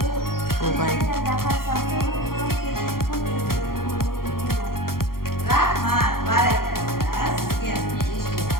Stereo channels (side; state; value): right; late; 0.93 ms